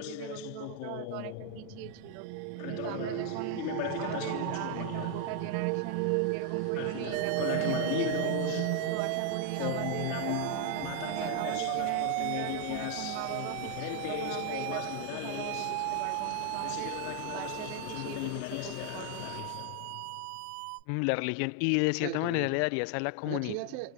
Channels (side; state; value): both; different; correlation 0.00